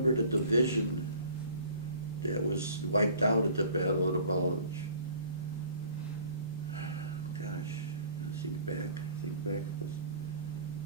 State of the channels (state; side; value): inverted; both; correlation -0.49